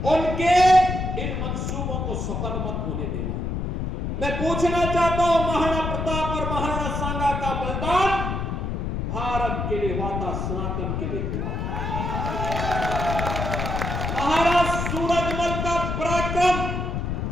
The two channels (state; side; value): noise; left; rumble, 2 dB below the sound